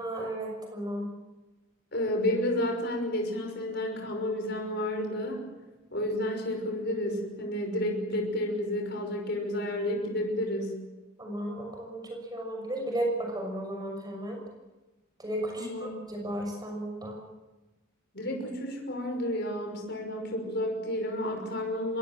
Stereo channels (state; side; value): normal; both; correlation 0.29